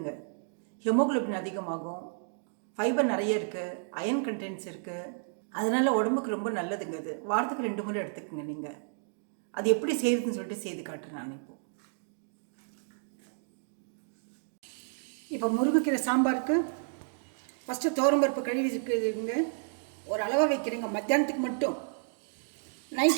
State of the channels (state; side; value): silent; left; digital silence